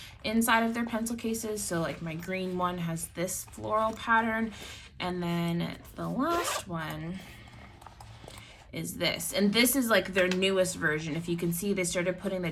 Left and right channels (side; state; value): both; identical; correlation 1.00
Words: inside of their pencil cases. So like my green one has this floral pattern, and then the last one is this, and this is like their newest version. If you can see, they started putting the